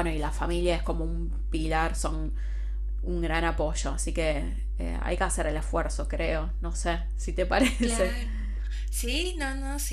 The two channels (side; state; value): both; identical; correlation 1.00